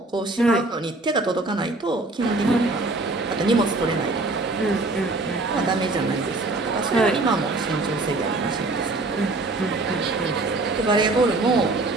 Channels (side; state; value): left; quieter; 3.1 dB